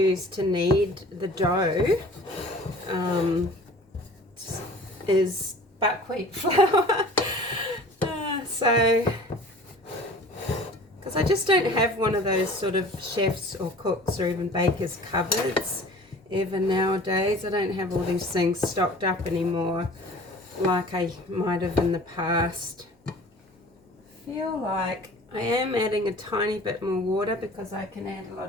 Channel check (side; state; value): both; normal; correlation 0.45